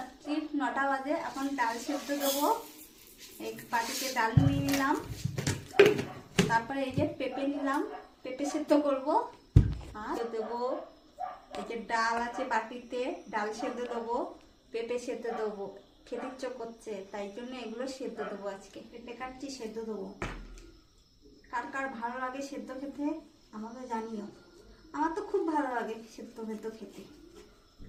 9টা বাজে। এখন ডাল সেদ্ধ দেবো। এই বাটিতে ডাল নিয়ে নিলাম, তারপরে এই যে পেঁপে নিলাম, পেঁপে সেদ্ধ করব। আর দেবো এই যে ডাল আছে বাটিতে, ডাল সেদ্ধ দেবো, পেঁপে সেদ্ধ দেবো। খেতে ইচ্ছে করছে, তাই জন্য এগুলো সেদ্ধ দেবো। আজকে পেঁপে কাটছি, সেদ্ধ দেবো। কার কার ভালো লাগে সেদ্ধ খেতে আমাকে জানিও। আমার তো খুব ভালো লাগে সেদ্ধ ভেদ্ধ খেতে।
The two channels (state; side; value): identical; both; correlation 1.00